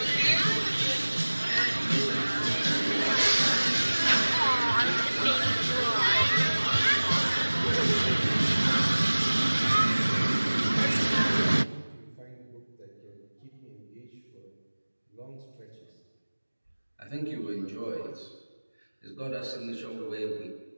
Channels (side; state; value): both; inverted; correlation -1.00